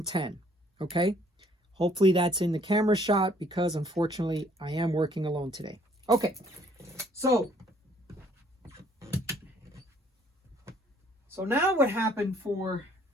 okay? Hopefully that's in the camera shot because unfortunately I am working alone today. Okay, so now what happened for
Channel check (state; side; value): normal; both; correlation 0.62